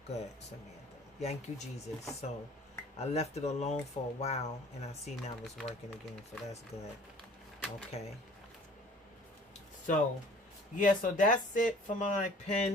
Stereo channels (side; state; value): both; normal; correlation 0.50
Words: good, Samantha. Thank you, Jesus. So I left it alone for a while, and I see now it's working again, so that's good. Okay. So, yeah, so that's it for my